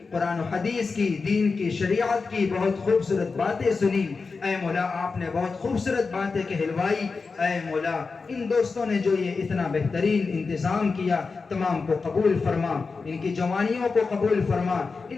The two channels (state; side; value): quieter; right; 4.5 dB